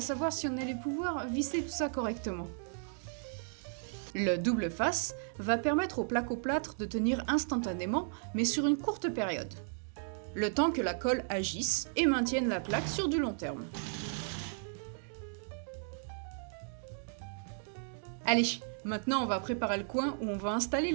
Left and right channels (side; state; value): left; silent; digital silence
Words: savoir si on allait pouvoir visser tout ça correctement. Le double face va permettre au placo-plâtre de tenir instantanément, mais sur une courte période. Le temps que la colle agisse et maintienne la plaque sur du long terme. Allez, maintenant on va préparer le coin où on va installer